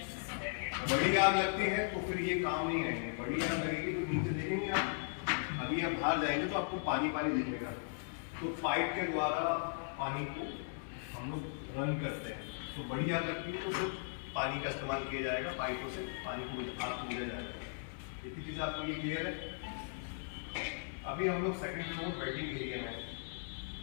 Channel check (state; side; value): silent; right; 53 dB below the other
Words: बड़ी आग लगती है तो फिर ये काम नहीं आएंगे। बड़ी आग लगेगी तो नीचे देखेंगे आप, अभी आप बाहर जाएंगे तो आपको पानी पानी दिखेगा, तो पाइप के द्वारा पानी को हम लोग रन करते हैं। तो बड़ी आग लगती है तो फिर पानी का इस्तेमाल किया जाएगा, पाइपों से पानी को आग को बुझाया जाएगा। इतनी चीज़ आपको ये क्लियर है? अभी हम लोग सेकंड फ्लोर वेटिंग एरिया में है।